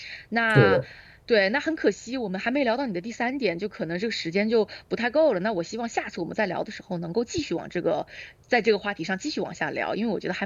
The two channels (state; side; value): identical; both; correlation 1.00